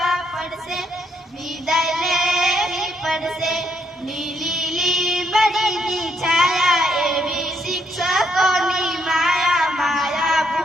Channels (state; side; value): normal; both; correlation 0.74